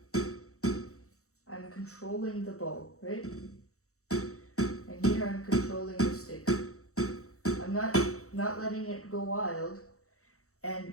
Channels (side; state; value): right; late; 0.64 ms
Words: I'm controlling the ball, right? And here I'm controlling the stick. I'm not letting it go wild.